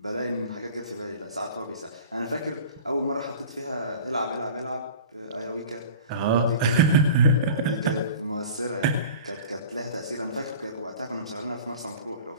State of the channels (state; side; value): inverted; both; correlation -0.40